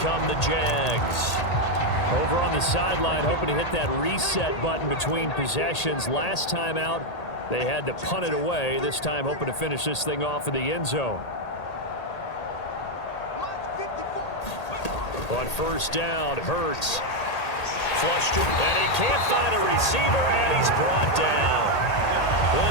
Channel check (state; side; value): late; right; 1.8 ms